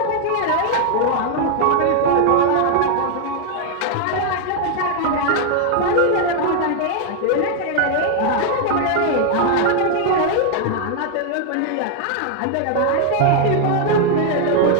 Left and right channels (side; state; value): both; different; correlation 0.00